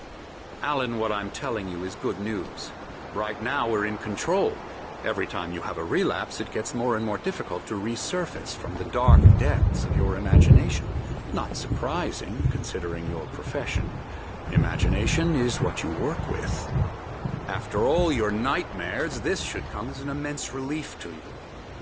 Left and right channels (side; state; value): both; identical; correlation 1.00